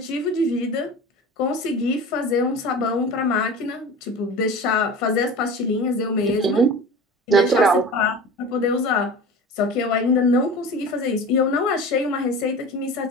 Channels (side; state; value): both; normal; correlation 0.34